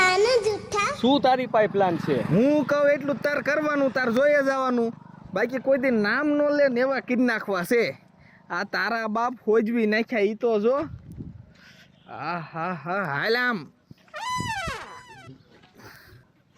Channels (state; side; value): identical; both; correlation 1.00